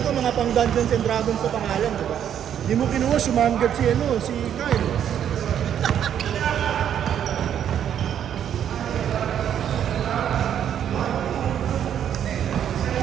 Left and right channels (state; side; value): quieter; left; 9.5 dB